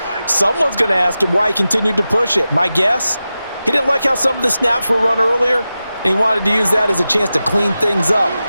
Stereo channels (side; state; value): both; inverted; correlation -0.93